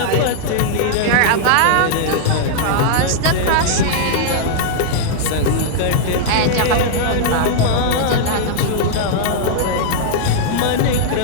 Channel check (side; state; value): both; different; correlation -0.01